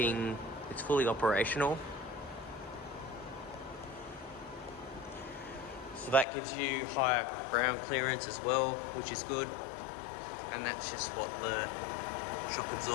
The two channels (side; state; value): right; drops out; at 6.2 s